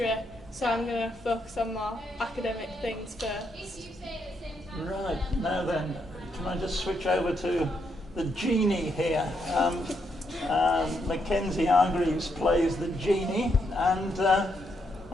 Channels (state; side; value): normal; both; correlation 0.78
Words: so I'm going to focus on more academic things first. Right, now then, can I just switch over to the genie here? Mackenzie Hargreaves plays the genie, and